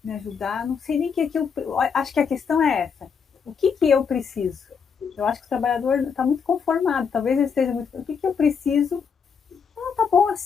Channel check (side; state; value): right; quieter; 6.3 dB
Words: me ajudar, não sei nem o que eu. Acho que a questão é essa. O que eu preciso? Eu acho que o trabalhador está muito conformado, talvez ele esteja muito. O que eu preciso? Tá bom